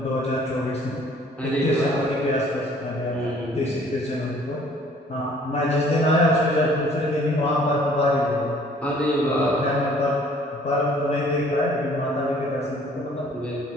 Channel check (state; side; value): normal; both; correlation 0.56